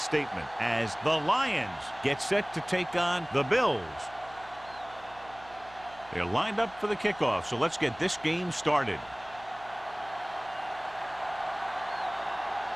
as the Lions get set to take on the Bills. They're lined up for the kickoff, so let's get this game started.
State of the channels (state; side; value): noise; right; hum, 22 dB below the sound